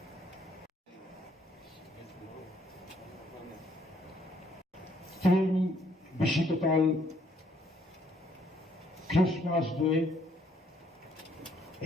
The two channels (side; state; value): both; normal; correlation 0.66